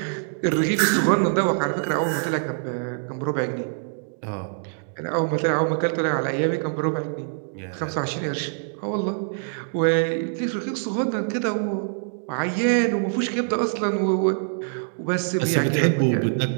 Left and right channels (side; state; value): left; silent; digital silence